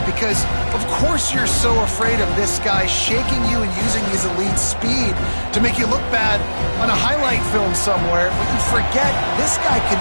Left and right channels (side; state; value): both; inverted; correlation -1.00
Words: because, of course, you're so afraid of this guy shaking you and using his elite speed to make you look bad on a highlight film somewhere. But you forget, this guy can